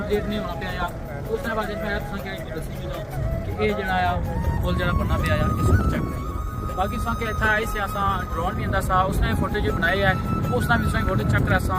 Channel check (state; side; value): identical; both; correlation 1.00